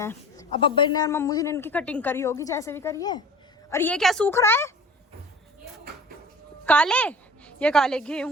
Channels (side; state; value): both; normal; correlation 0.41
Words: हैं। अब अब्बा ने और मम्मू जी ने इनकी कटिंग करी होगी, जैसे भी करी है। और ये क्या सूख रहा है? काले, ये काले